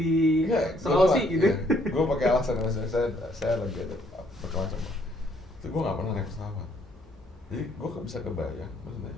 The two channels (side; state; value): both; normal; correlation 0.66